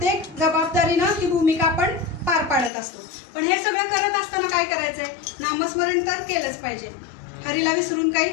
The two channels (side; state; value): right; drops out; at 2.7 s